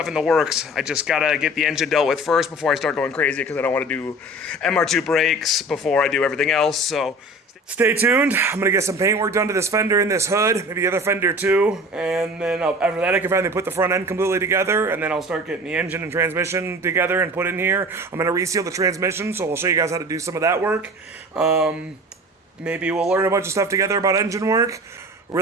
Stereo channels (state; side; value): normal; both; correlation 0.40